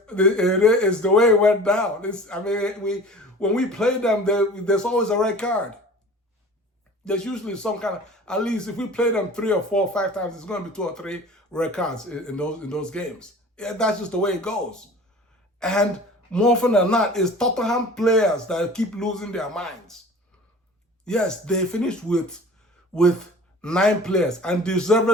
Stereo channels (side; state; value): both; normal; correlation 0.42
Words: the way it went down. When we play them, there's always a red card. There's usually some kind of, at least if we play them 3 or 4 or 5 times, it's going to be 2 or 3 red cards in those games. Yeah, that's just the way it goes. And more often than not, it's Tottenham players that keep losing their minds. Yes, they finished with 9 players, and